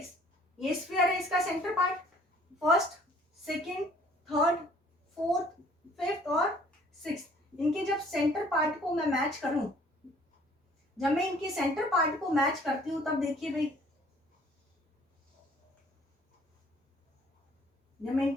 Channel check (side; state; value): both; normal; correlation 0.56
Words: ये स्फीयर है, इसका centre part, first second third fourth fifth और 6। इनके जब सेंटर पार्ट को मैं मैच करूं, जब मैं इनके सेंटर पार्ट को मैच करती हूं तब देखिए भाई, जब मैं